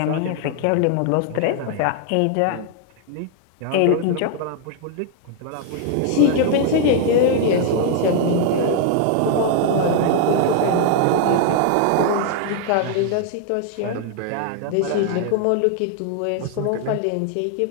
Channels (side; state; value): both; different; correlation 0.00